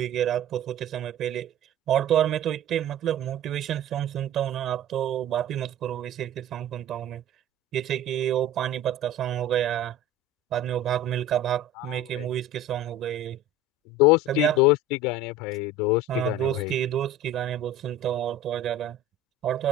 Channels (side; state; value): both; normal; correlation 0.37